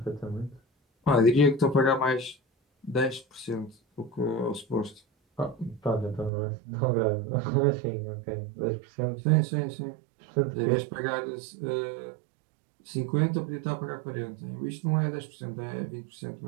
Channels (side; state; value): left; drops out; at 6.3 s